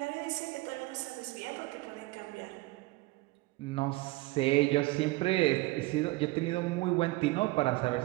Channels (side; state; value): left; quieter; 20.8 dB